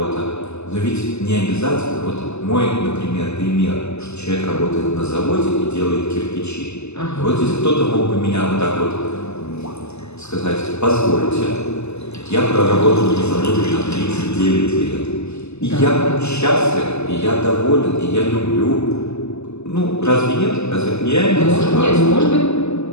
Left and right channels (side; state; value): right; late; 0.80 ms